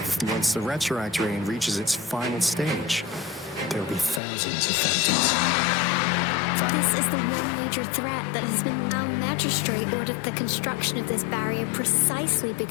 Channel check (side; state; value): right; drops out; at 4.2 s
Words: once the retroact rain reaches its final stage. There'll be thousands of phantoms. This is the one major threat that has been... Our magistrate ordered the construction of this barrier precisely